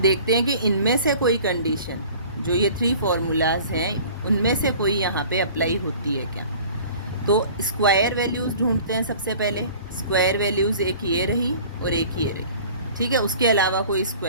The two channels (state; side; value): inverted; both; correlation -0.46